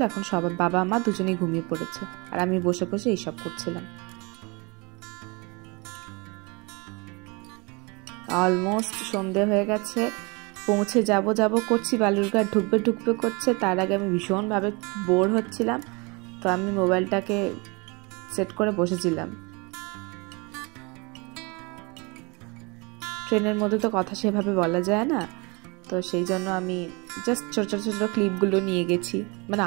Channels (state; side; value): quieter; left; 28.7 dB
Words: এখন সবাই বাবা মা দুজনেই ঘুমিয়ে পড়েছে, আর আমি বসে বসে এইসব করছিলাম। অলমোস্ট সন্ধে হয়ে গেছে, পৌঁছে যাব করছি, বালুরঘাট ঢুকবে করছে। তার আগে আমি ভীষণভাবে বোর হচ্ছিলাম, তো আমি মোবাইলটাকে সেট করে বসেছিলাম। ট্রেনের মধ্যে তো কথা সেভাবে বলা যায় না, তো সেই জন্য আমি জাস্ট ছোট ক্লিপগুলো নিয়ে গেছি। মানে